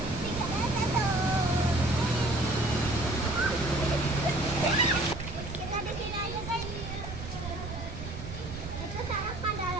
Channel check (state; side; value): noise; right; rumble, 9 dB below the sound